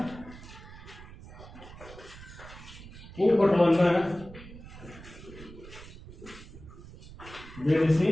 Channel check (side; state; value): right; noise; rumble, 16 dB below the sound